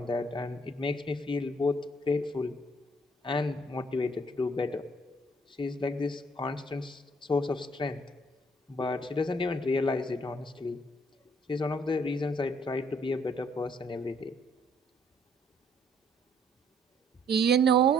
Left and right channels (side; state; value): both; normal; correlation 0.64